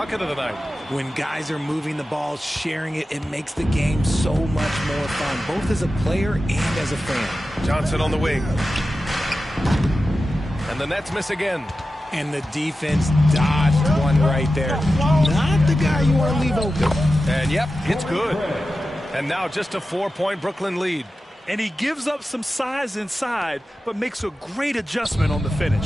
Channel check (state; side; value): normal; both; correlation 0.93